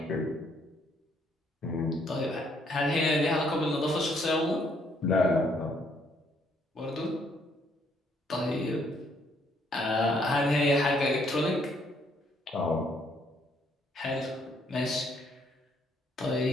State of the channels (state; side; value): normal; both; correlation 0.69